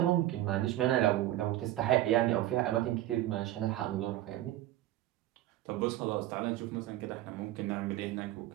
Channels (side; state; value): left; quieter; 14.6 dB